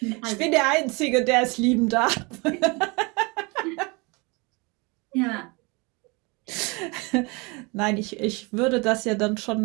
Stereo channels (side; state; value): left; quieter; 28.1 dB